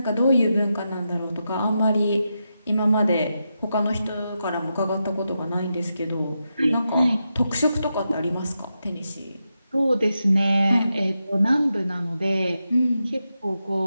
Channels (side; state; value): both; inverted; correlation -0.87